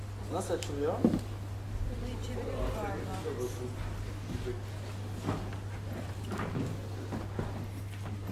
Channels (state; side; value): identical; both; correlation 1.00